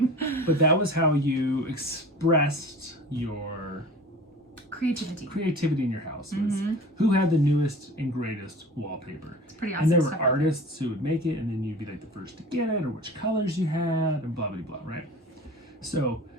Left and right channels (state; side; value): normal; both; correlation 0.39